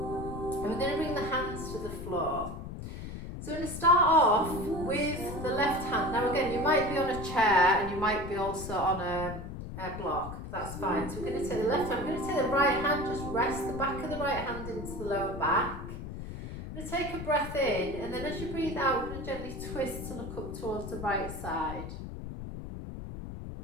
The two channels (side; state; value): left; noise; rumble, 8 dB below the sound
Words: and we're going to bring the hands to the floor. So we're going to start off with the left hand. Now again, you might be on a chair and you might be also on a block, that's fine. So we're going to take the left hand, we're going to take the right hand, just rest the back of the right hand into the lower back. We're going to take a breath in, and then as you breathe out, we're going to gently twist to look up towards the right side.